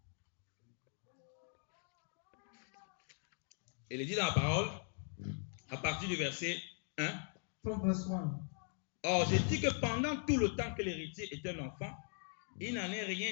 Et il dit dans la parole, à partir du verset 1. From verse 1. Or, je dis que pendant tout le temps que l'héritier est un enfant, il n'en est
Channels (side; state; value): right; silent; 51 dB below the other